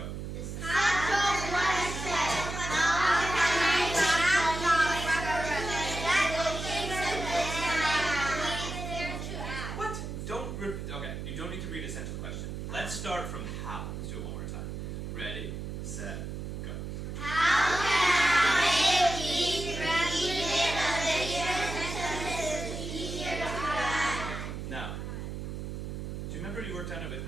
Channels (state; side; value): noise; right; hum, 6 dB below the sound